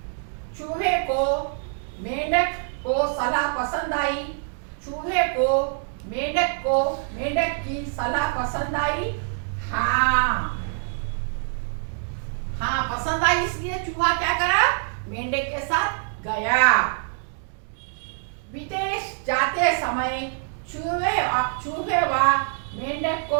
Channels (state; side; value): silent; left; digital silence